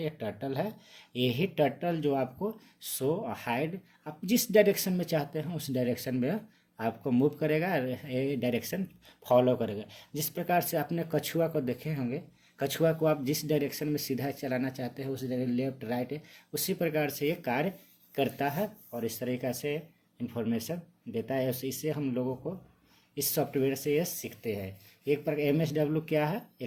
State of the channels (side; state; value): both; identical; correlation 1.00